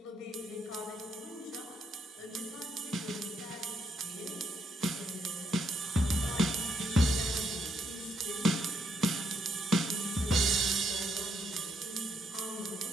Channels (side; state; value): both; normal; correlation 0.75